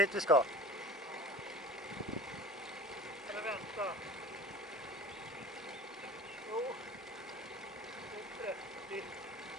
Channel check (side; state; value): both; normal; correlation 0.39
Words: vi ska. Eller vänta. Jo. Det är 30.